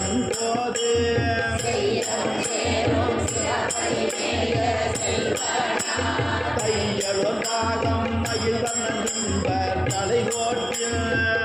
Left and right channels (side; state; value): both; identical; correlation 1.00